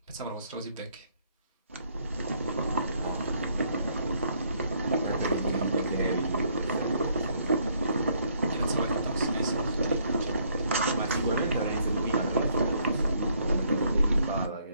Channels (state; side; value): inverted; both; correlation -0.68